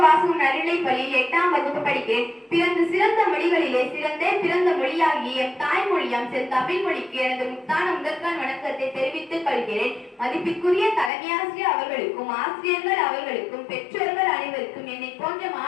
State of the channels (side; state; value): right; drops out; at 11.1 s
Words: வாசகம் நடுநிலை பள்ளியில் 8ஆம் வகுப்பு படிக்கிறேன். பிறந்து சிறந்த மொழிகளிலே சிறந்தே பிறந்த மொழியாகிய எம் தாய்மொழியாம் தமிழ் மொழிக்கு எனது முத்தான முதற்கான வணக்கத்தை தெரிவித்துக் கொள்கிறேன். மதிப்பிற்குரிய தலைமையாசிரியர் அவர்களுக்கும் ஆசிரியர்கள் அவர்களுக்கும் பெற்றோர்கள் அனைவருக்கும் என்னை போன்ற